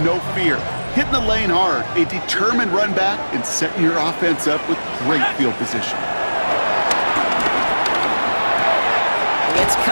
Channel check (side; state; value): both; inverted; correlation -1.00